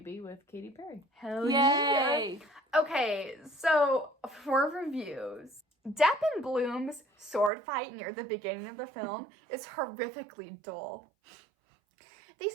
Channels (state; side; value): drops out; left; at 7.5 s